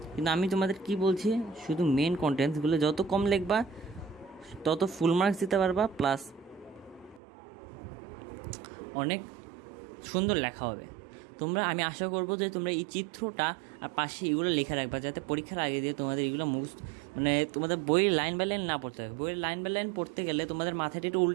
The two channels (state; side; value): drops out; left; at 7.2 s